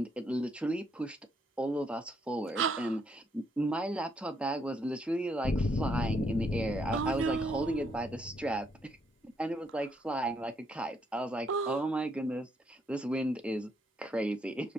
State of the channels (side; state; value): both; normal; correlation 0.73